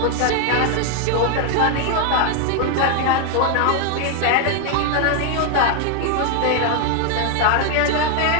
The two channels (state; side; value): different; both; correlation 0.01